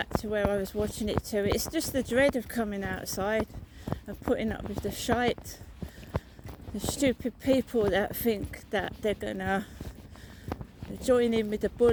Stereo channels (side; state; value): both; identical; correlation 1.00